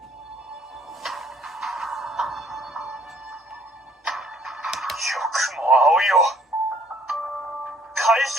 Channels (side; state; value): both; normal; correlation 0.60